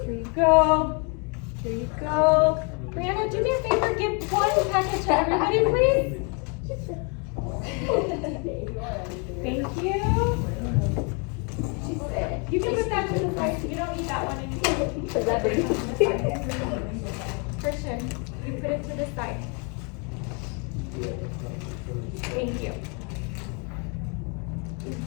Here you go. Here you go. Brianna, do me a favor. Give one packet to everybody, please. Thank you. You can put that to the side. You don't need that one anymore. Christian, you put it to the side. Thank you.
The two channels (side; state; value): right; quieter; 35.5 dB